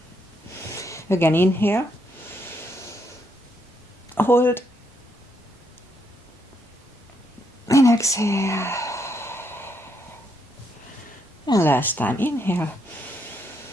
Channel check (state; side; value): normal; both; correlation 0.76